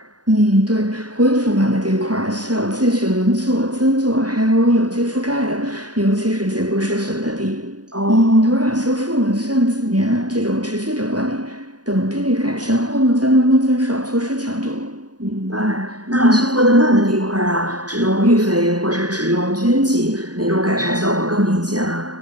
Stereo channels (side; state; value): left; late; 0.69 ms